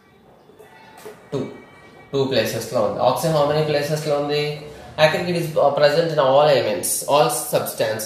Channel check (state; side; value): identical; both; correlation 1.00